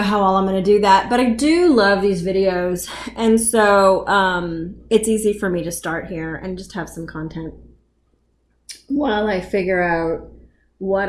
how well I'm going to do that, but I do love these videos. And so, it's easy for me to start here and just have some content while I figure out what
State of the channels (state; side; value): identical; both; correlation 1.00